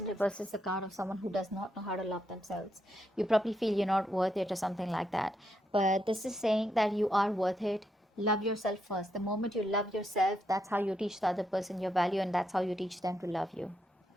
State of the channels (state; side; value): normal; both; correlation 0.80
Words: reverse is a card of someone who does not know how to love themselves. You probably feel you're not worth it or something like that. But this is saying that you are worth it. Love yourself first. The moment you love yourself, that's how you teach the other person your value, and that's how you teach them to love you.